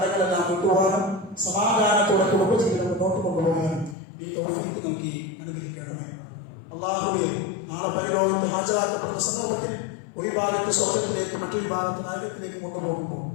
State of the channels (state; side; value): drops out; right; at 4.0 s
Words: വിട്ടുപോകാനും സമാധാനത്തോടെ കുടുംബജീവിതം മുന്നോട്ട് കൊണ്ടുപോകാനും ഈ തൗഫീഖ് നൽകി അനുഗ്രഹിക്കണമേ. അള്ളാഹുവെ നാളെ പരലോകത്ത് ഹാജരാക്കപ്പെടുന്ന സന്ദർഭത്തിൽ ഒരു ഭാഗത്ത് സ്വർഗത്തിലേക്ക് മറ്റൊരു ഭാഗത്ത് നരകത്തിലേക്ക് കൊണ്ടുപോകുമ്പോൾ